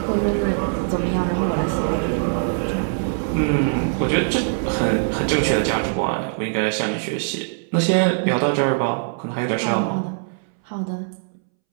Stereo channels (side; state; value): left; silent; 64 dB below the other